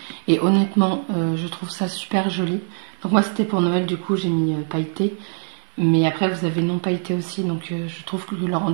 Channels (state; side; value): silent; left; 60 dB below the other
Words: Et honnêtement, je trouve ça super joli. Donc moi, c'était pour Noël, du coup, j'ai mis pailleté. Mais après, vous avez non pailleté aussi. Donc je trouve que le